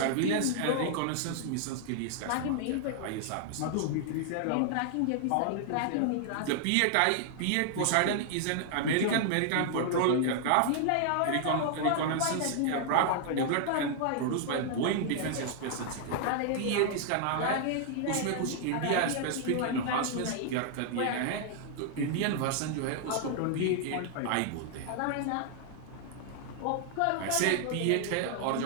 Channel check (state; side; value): different; both; correlation 0.00